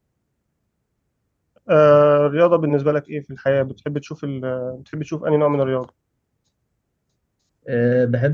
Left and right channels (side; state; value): both; identical; correlation 1.00